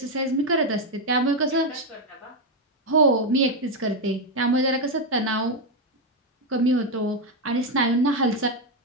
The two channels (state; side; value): normal; both; correlation 0.05